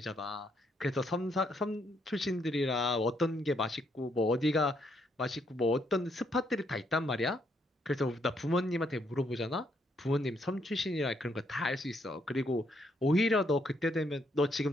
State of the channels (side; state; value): both; normal; correlation 0.73